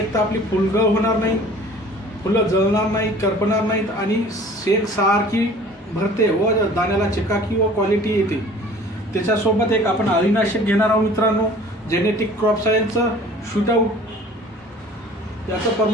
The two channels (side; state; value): both; normal; correlation 0.48